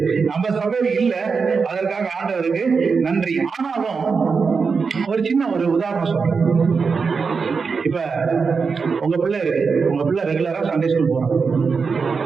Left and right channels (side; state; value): left; quieter; 5.2 dB